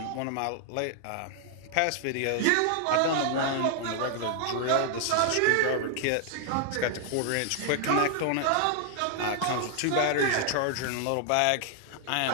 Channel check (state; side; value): different; both; correlation 0.00